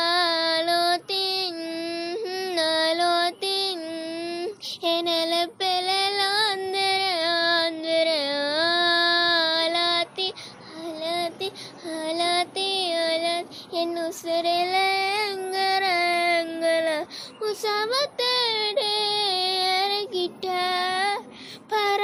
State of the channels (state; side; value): identical; both; correlation 1.00